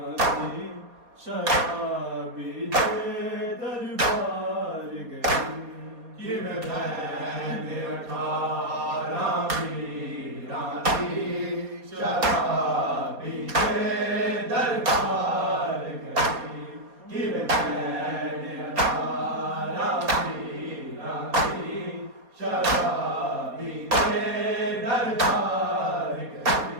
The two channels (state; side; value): late; left; 4.2 ms